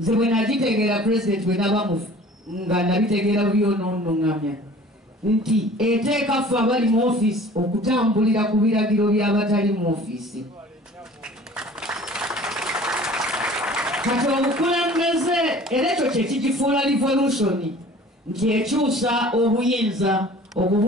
bwe nagitegeera president bwe naba nga nabitegeera byonoonoŋŋamya nti eteeka ffe abali mu ofiisi okutambulira ku biragiro by'abatali mu ofiisi. Kati obukulembeze era ekyo kye kigifuula revolution nti ekyusa obuyinza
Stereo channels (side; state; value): both; normal; correlation 0.47